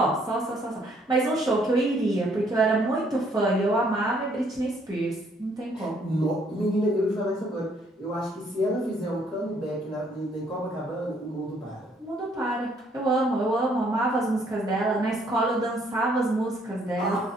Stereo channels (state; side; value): normal; both; correlation 0.66